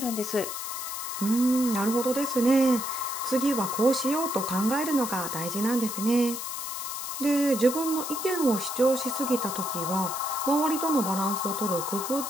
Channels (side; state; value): left; noise; hiss, 6 dB below the sound